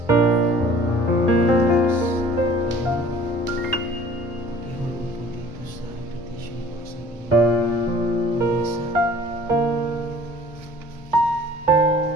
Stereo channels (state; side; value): normal; both; correlation 0.49